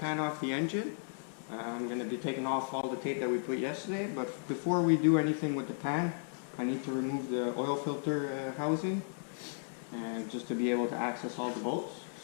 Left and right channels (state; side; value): silent; right; digital silence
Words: off the engine. I'm going to be taking off all the tape that we put yesterday, but before we do anything with the pan, I need to remove the oil filter housing just to be able to access all the bolts.